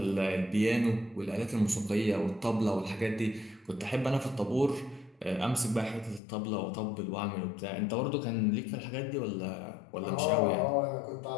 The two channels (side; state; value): right; drops out; at 6.2 s